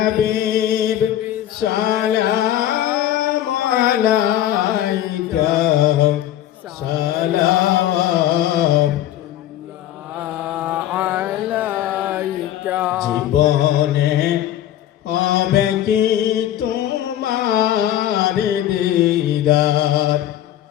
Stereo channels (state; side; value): quieter; right; 12.2 dB